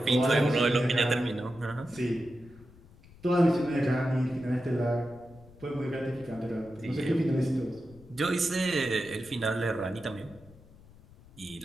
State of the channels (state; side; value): noise; left; rumble, 23 dB below the sound